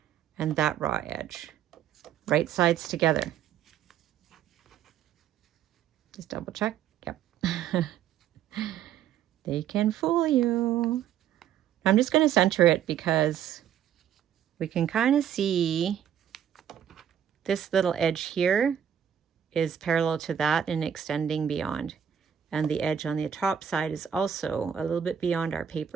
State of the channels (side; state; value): left; quieter; 9.3 dB